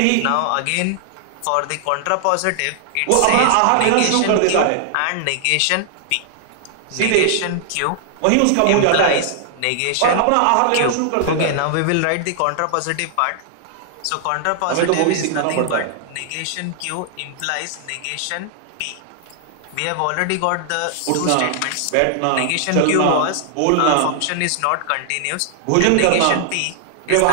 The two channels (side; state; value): both; different; correlation -0.01